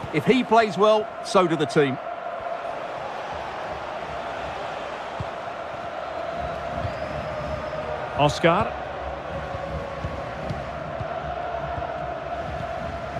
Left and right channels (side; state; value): both; identical; correlation 1.00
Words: If he plays well, so do the team. Oscar.